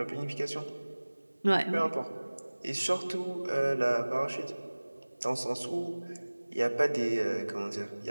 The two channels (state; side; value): inverted; both; correlation -1.00